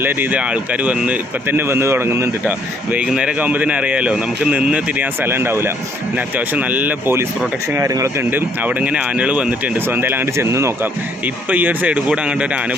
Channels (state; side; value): normal; both; correlation 0.66